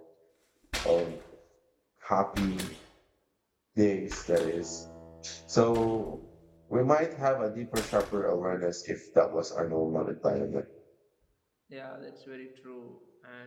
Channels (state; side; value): identical; both; correlation 1.00